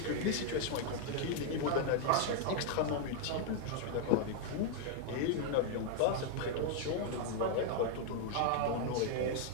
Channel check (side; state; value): both; different; correlation 0.00